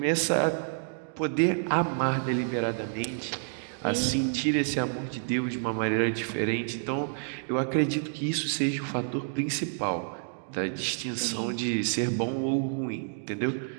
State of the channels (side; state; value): left; silent; digital silence